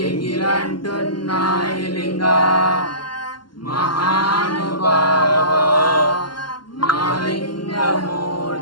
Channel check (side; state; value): right; late; 0.71 ms